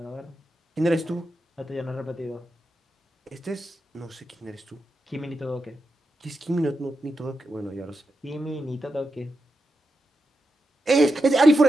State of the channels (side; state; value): both; normal; correlation 0.88